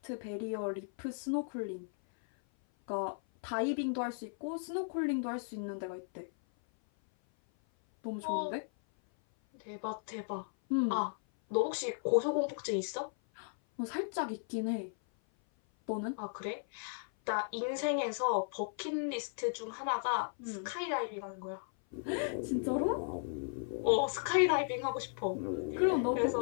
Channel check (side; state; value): right; silent; 54 dB below the other